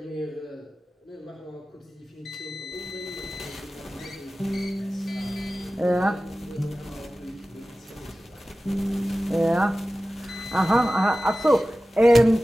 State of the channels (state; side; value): normal; both; correlation 0.96